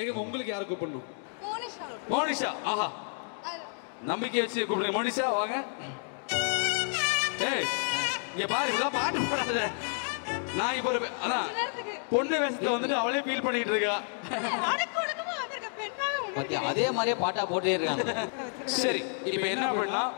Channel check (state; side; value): silent; right; 58 dB below the other